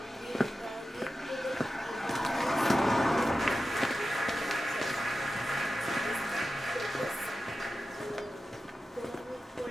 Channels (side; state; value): both; normal; correlation 0.92